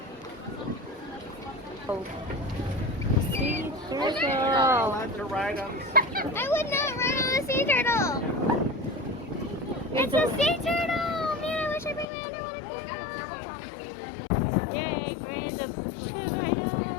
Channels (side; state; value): right; drops out; at 12.1 s